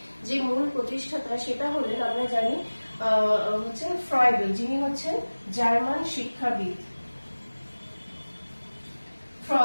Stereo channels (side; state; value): both; inverted; correlation -1.00